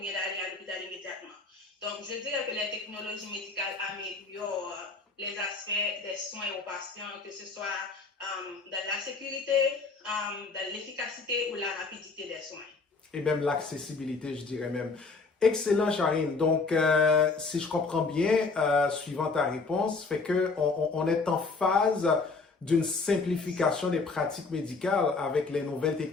d'aller à l'hôpital immédiatement. Donc, je dirais que les technologies médicales améliorent les aspects des soins aux patients, que ce soit dans la sécurité, dans l'efficacité ou la rapidité des soins. Et même l'accessibilité, je dirais même. Excellent, Charine. Donc, si je comprends bien, suivant ta réponse, fait que on est en phase d'une simplification des pratiques médicales avec les nouvelles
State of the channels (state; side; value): quieter; right; 4.1 dB